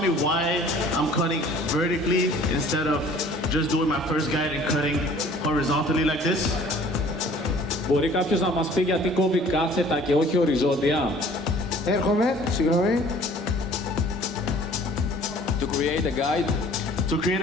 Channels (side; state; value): both; normal; correlation 0.52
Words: me why I'm cutting vertically instead of just doing my first guide and cutting horizontally like this? Μπορεί κάποιος να μας πει γιατί κόβει κάθετα και όχι οριζόντια? Έρχομαι, συγγνώμη. To create a guide? To create